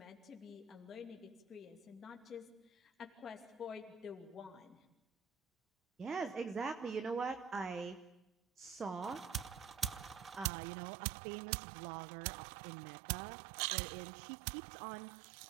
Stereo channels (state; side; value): drops out; left; at 10.5 s